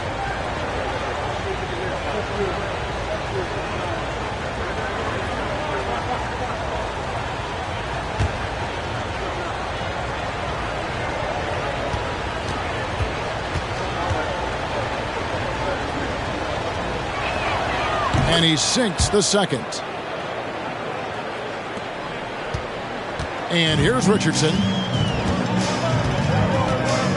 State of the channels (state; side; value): identical; both; correlation 1.00